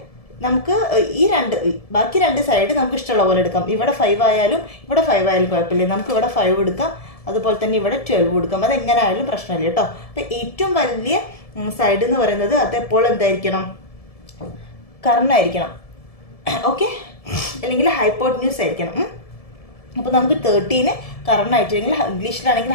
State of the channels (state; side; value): late; right; 1.7 ms